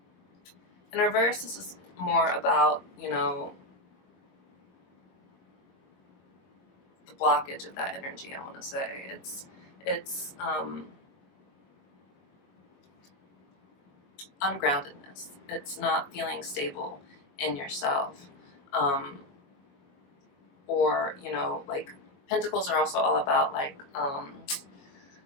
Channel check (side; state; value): right; late; 21 ms